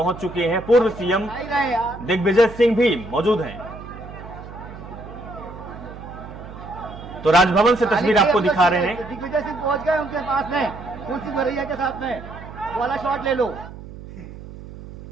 चुके हैं। पूर्व सीएम दिग्विजय सिंह भी मौजूद हैं। तो राजभवन से तस्वीर आपको दिखा रहे हैं। दिग्विजय सिंह पहुंच गए उनके पास में, फूल सिंह बरैया के साथ में, वाला शॉट ले लो।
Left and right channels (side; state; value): right; noise; hum, 14 dB below the sound